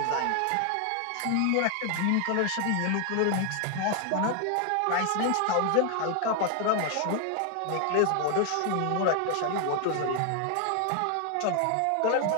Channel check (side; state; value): both; different; correlation 0.00